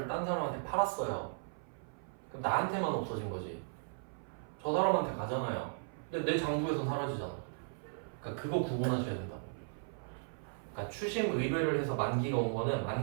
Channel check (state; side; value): silent; left; 53 dB below the other